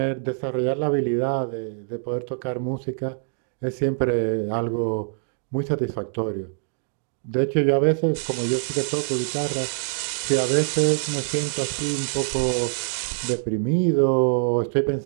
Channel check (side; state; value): left; silent; digital silence